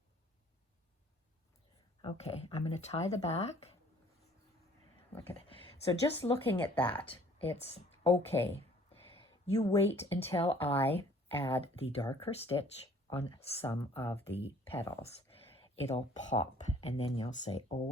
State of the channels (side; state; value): both; normal; correlation 0.55